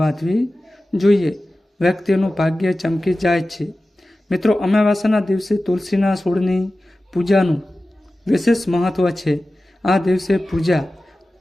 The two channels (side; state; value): both; normal; correlation 0.95